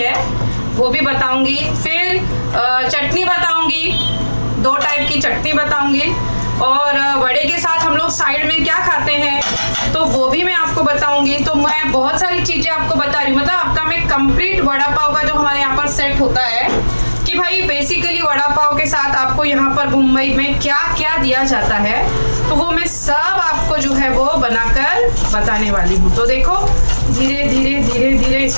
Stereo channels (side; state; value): both; inverted; correlation -1.00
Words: वो भी बताऊंगी, फिर चटनी बताऊंगी, 2 टाइप की चटनी बताऊंगी, और वड़े के साथ हम लोग साइड में क्या खाते हैं तो वो भी मैं आपको बताऊंगी। तो मैं बहुत सारी चीजें आपको बता रही हूँ, मतलब आपका मैं कंप्लीट वड़ा पाव का जो हमारे यहाँ पर सेट होता है कि भाई बेसिकली वड़ा पाव के साथ आपको यहाँ पर मुंबई में क्या क्या दिया जाता है, तो वो मैं सब आपको जो है वो बनाकर बताने वाली हूँ। तो देखो धीरे धीरे धीरे धीरे